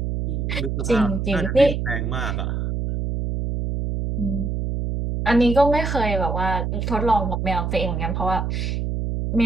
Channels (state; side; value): noise; right; hum, 2 dB below the sound